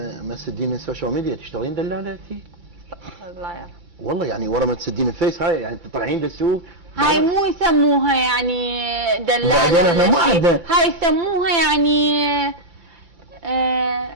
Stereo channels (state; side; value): late; left; 2.3 ms